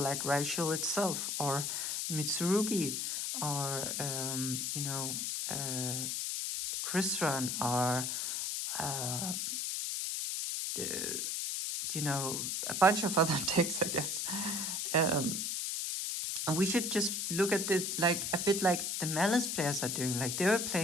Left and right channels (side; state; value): left; noise; hiss, 1 dB below the sound